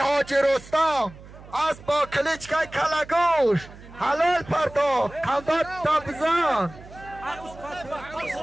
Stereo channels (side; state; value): right; noise; hum, 19 dB below the sound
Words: رستم، اسب با کلیچکه کلگوش، حلال پرداخت قندات تابزان.